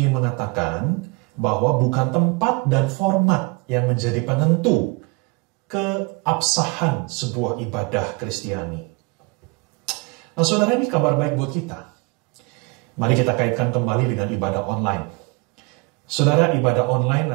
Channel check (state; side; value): quieter; left; 28.0 dB